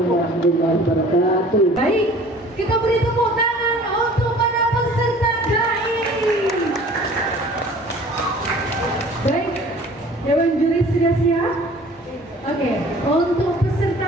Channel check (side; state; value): both; normal; correlation 0.48